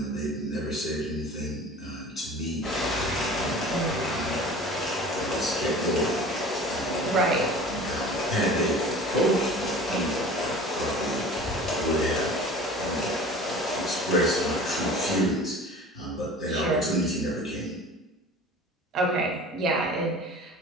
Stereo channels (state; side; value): normal; both; correlation 0.41